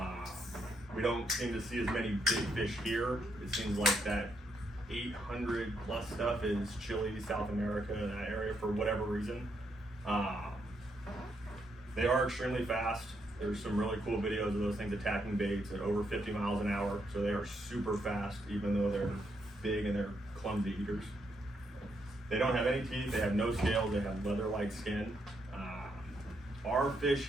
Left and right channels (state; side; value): normal; both; correlation 0.77